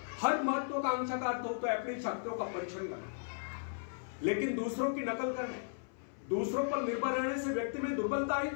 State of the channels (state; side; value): silent; right; 54 dB below the other